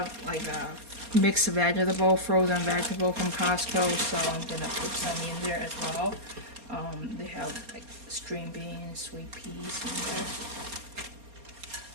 like a mixed vegetable, frozen vegetable from Costco. So I'm gonna put some in there as well. They have like string beans, sweet peas in there.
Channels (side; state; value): left; late; 4.3 ms